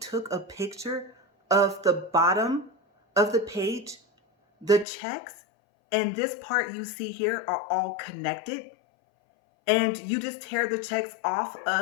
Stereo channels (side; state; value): right; drops out; at 4.9 s